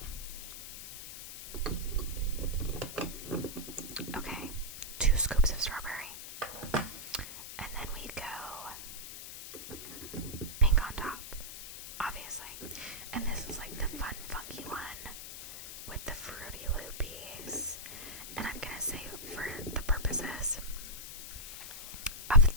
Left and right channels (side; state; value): left; noise; hiss, 10 dB below the sound